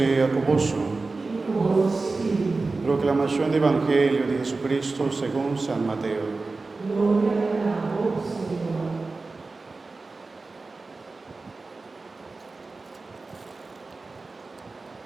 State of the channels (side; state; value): left; quieter; 3.7 dB